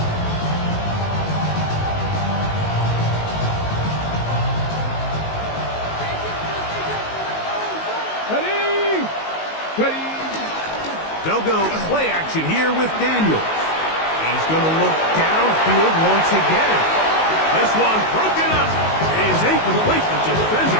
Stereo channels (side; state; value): right; late; 19 ms